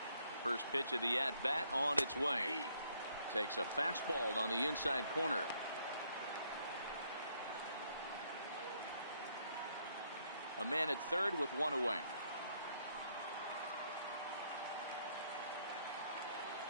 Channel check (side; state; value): both; inverted; correlation -0.70